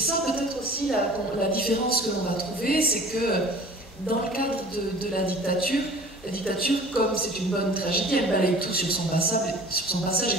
peut-être aussi la différence que l'on va trouver, c'est que dans le cadre de la dictature, comme c'est une bonne tragédie, elle balaye tout sur son passage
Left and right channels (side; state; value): both; normal; correlation 0.45